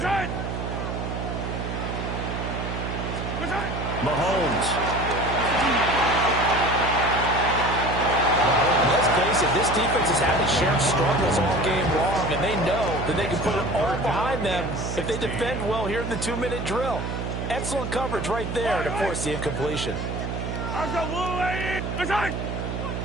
Mahomes. Let's face it, this defense has had its share of struggles all game long, and they know that they can put it all behind them if they defend well here in the 2-minute drill. Excellent coverage right there to force the incompletion.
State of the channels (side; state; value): right; noise; hum, 4 dB below the sound